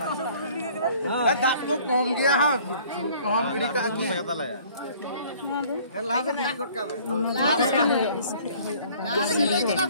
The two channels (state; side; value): inverted; both; correlation -0.54